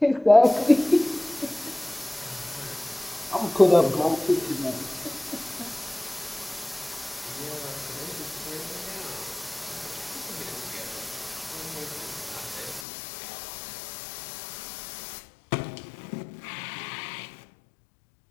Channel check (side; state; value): right; drops out; at 12.9 s